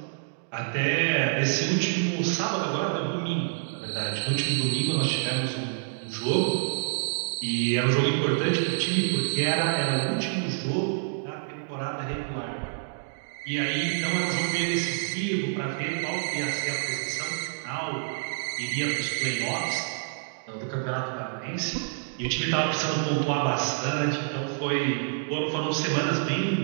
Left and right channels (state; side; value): silent; left; digital silence